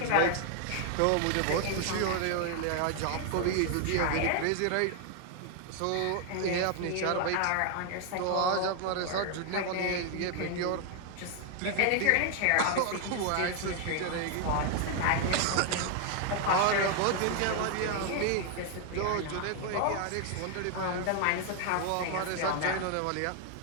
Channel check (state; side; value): different; both; correlation 0.00